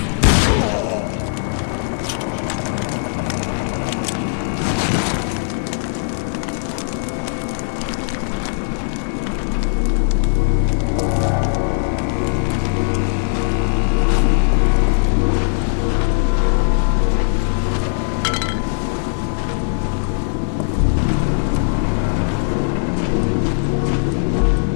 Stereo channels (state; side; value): silent; right; digital silence